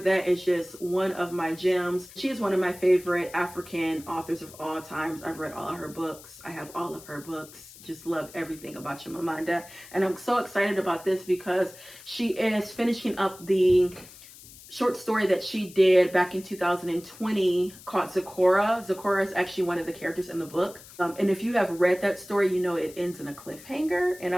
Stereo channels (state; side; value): noise; left; hiss, 19 dB below the sound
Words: is just one of my gems. She is one of my favorite African authors of all times. I've read all of her books. I have all of her books. Just love everything about Chimamanda. And I'm so excited about this because she is finishing up the short story that she did back in 2020 called Zecora. Zecora is actually one of the characters in the book. And if you have read that story, you know it ends in a cliffhanger. And